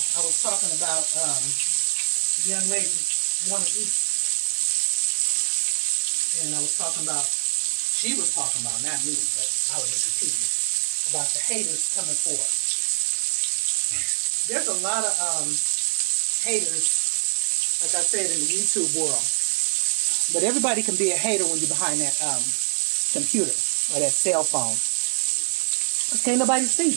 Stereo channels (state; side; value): silent; left; digital silence